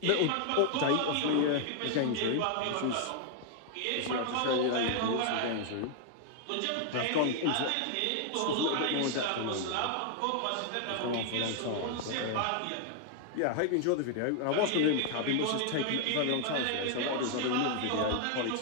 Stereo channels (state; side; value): different; both; correlation 0.00